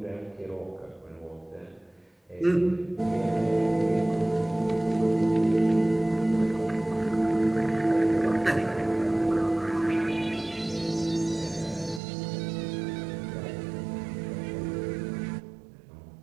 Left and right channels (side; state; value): left; drops out; at 12.0 s